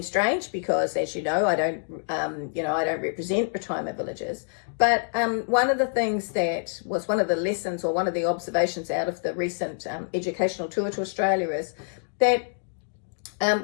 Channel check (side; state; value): right; silent; digital silence